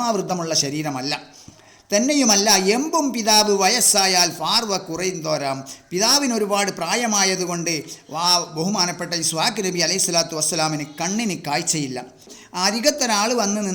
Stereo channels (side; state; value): both; identical; correlation 1.00